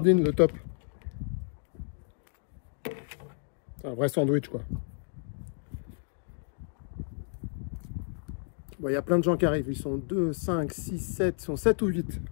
le top. C'est un vrai sandwich, quoi. Bon, il y a plein de gens qui arrivent. Ils sont 2, 5, 6, 7. Ils sont 7 ou 8.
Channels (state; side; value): silent; right; 57 dB below the other